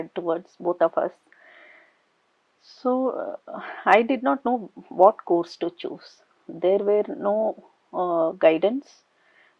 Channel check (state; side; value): identical; both; correlation 1.00